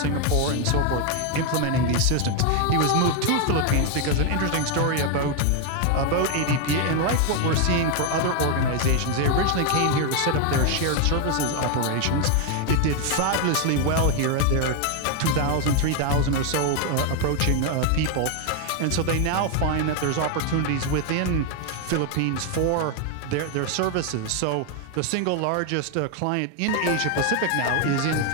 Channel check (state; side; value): different; both; correlation 0.01